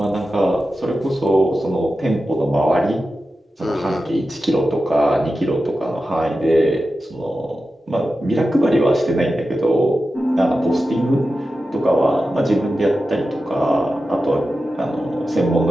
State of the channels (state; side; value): normal; both; correlation 0.92